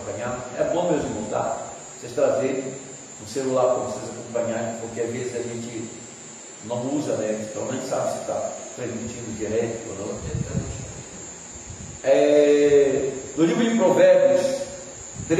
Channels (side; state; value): both; identical; correlation 1.00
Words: É bom, meus irmãos, tá? Vocês trazerem o celular para vocês acompanharem, porque às vezes a gente não usa, né? Então a gente sabe se está transmitindo direto ou não. No livro de Provérbios